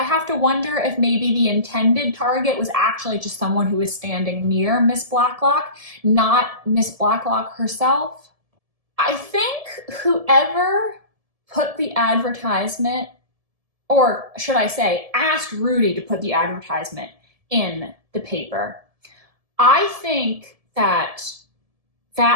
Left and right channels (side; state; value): left; late; 1.7 ms